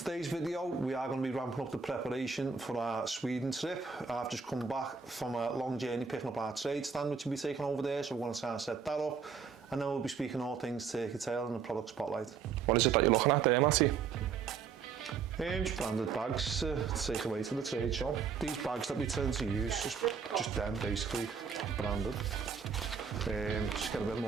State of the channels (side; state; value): left; quieter; 6.1 dB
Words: video, we are going to be ramping up the preparation for our Sweden trip. I've just come back from a long journey picking up our trade stand, which will be taken over there, so we're going to try and set that up. And then we'll be speaking all things turkey tail and the product spotlight. What is it that you're looking at there, Matty? Just branded bags to take away to the trade show. These bags that we tend to use, just them basically branded. Just get a bit